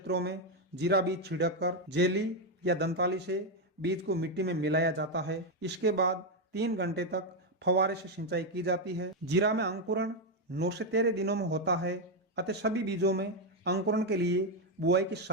में जीरा बीज छिड़क कर जेली या दंताली से बीज को मिट्टी में मिलाया जाता है। इसके बाद 3 घंटे तक फव्वारे से सिंचाई की जाती है। जीरा में अंकुरण 9 से 13 दिनों में होता है, अतः सभी बीजों में अंकुरण के लिए बुआई के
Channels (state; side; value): normal; both; correlation 0.04